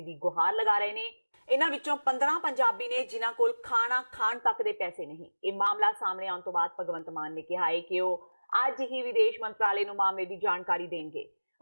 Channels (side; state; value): both; inverted; correlation -1.00